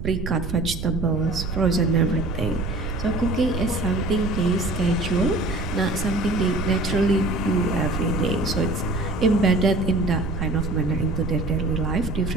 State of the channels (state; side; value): noise; right; rumble, 5 dB below the sound